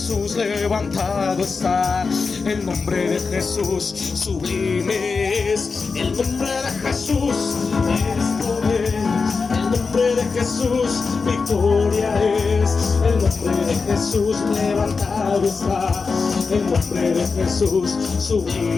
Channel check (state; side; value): quieter; right; 4.7 dB